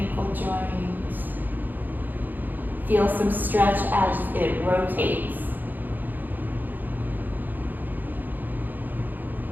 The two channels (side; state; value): left; late; 0.087 ms